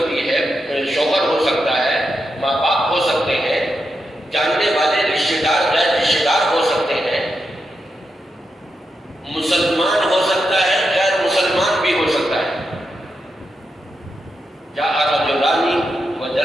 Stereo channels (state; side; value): normal; both; correlation 0.86